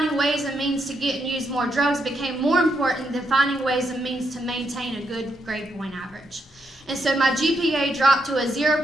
ways and means to get and use more drugs became more important than finding ways and means to maintain a good grade point average. And so my GPA dropped to a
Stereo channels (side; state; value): both; normal; correlation 0.79